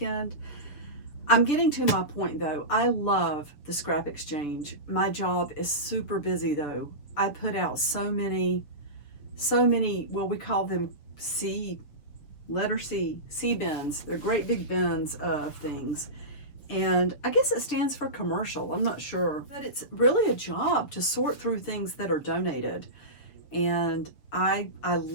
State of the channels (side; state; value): right; late; 6.8 ms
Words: I'm getting to my point though. I love the scrap exchange. My job is super busy though. I put out so many, well, we call them letter C bins. They're great big bins of things. And I guess it stands for commercial. I'm not sure. But it's really a job to sort through things that are donated. And I